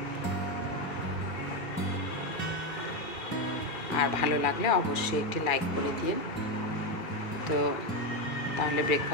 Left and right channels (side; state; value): right; late; 2.4 ms